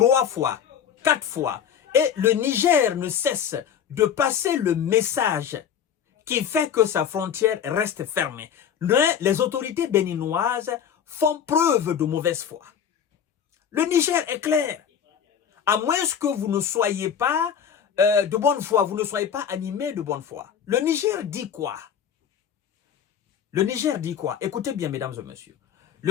fois, quatre fois. Et le Niger ne cesse de passer le message qui fait que sa frontière reste fermée. Les autorités béninoises font preuve de mauvaise foi. Le Niger est clair. À moins que vous ne soyez pas de bonne foi, vous ne soyez pas animé de bonne foi. Le Niger dit quoi? Le Niger dit quoi? Écoutez bien, mesdames et messieurs.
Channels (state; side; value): quieter; right; 8.3 dB